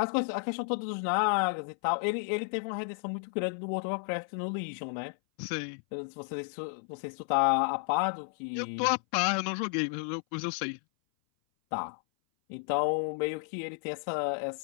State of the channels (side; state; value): right; silent; 56 dB below the other